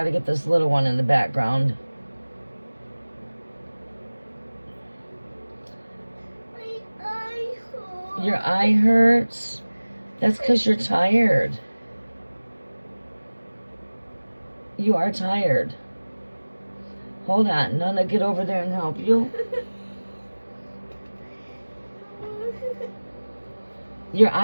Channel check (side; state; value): both; inverted; correlation -1.00